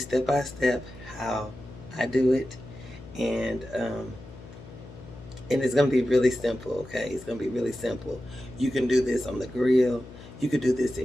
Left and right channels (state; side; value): noise; left; hum, 17 dB below the sound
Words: by step how I do it, and and it's gonna be really simple, okay? It's gonna be really simple. You can do this on the grill. You could do this